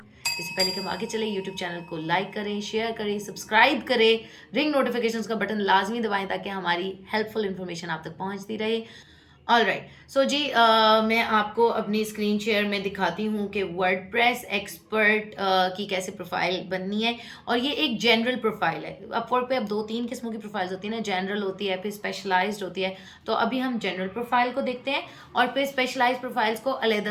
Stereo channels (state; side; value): identical; both; correlation 1.00